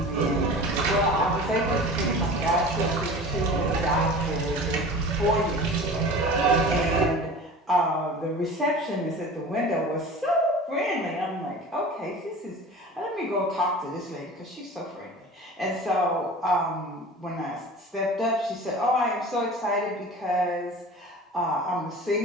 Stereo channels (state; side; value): normal; both; correlation 0.38